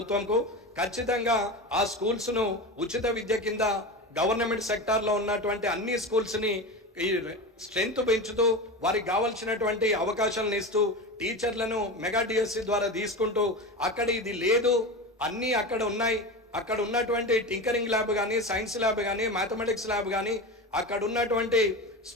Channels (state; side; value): normal; both; correlation 0.25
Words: ఖచ్చితంగా ఆ స్కూల్స్ను ఉచిత విద్య కింద గవర్నమెంట్ సెక్టార్లో ఉన్నటువంటి అన్ని స్కూల్స్ని ఈ స్ట్రెంత్ పెంచుతూ వారికి కావాల్సినటువంటి అవకాశాలను ఇస్తూ టీచర్లను మెగా డిఎస్సి ద్వారా తీసుకుంటూ అక్కడ ఇది లేదు అన్నీ అక్కడ ఉన్నాయి, అక్కడ ఉన్నటువంటి టింకరింగ్ ల్యాబ్ కానీ, సైన్స్ ల్యాబ్ కానీ, మ్యాథమెటిక్స్ ల్యాబ్ కానీ, అక్కడ ఉన్నటువంటి